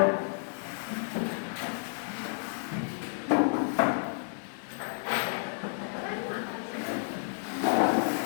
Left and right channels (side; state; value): right; silent; digital silence